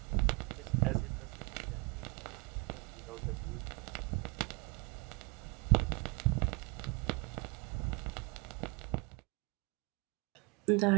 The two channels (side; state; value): left; quieter; 28.5 dB